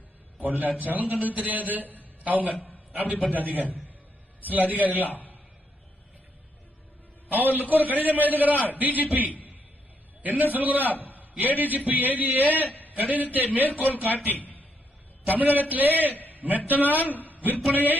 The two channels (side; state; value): both; normal; correlation 0.76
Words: கொள்ளாச்சாலும் கண்ணு தெரியாது. அவங்க அப்படிப்பட்ட அதிகாரி. சில அதிகாரிகள் அவர்களுக்கு ஒரு கடிதம் எழுதுகிறார் டிஜிபி. என்ன சொல்கிறார்? ஏடிஜிபி எழுதிய கடிதத்தை மேற்கோள் காட்டி தமிழகத்திலே மெத்தனால் விற்பனையை